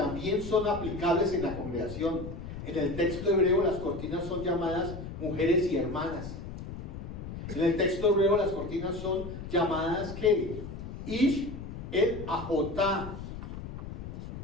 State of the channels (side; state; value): left; noise; rumble, 9 dB below the sound